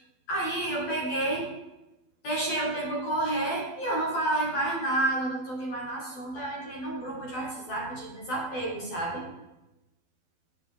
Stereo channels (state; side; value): late; right; 12 ms